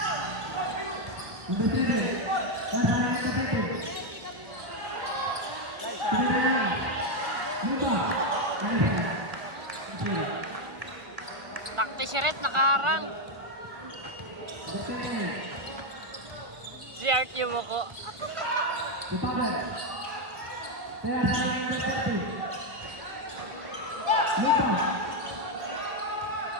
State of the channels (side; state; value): left; late; 1.2 ms